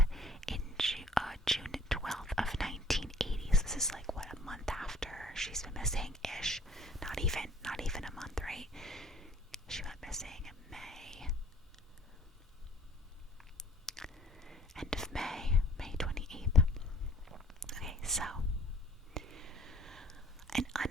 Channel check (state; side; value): normal; both; correlation 0.53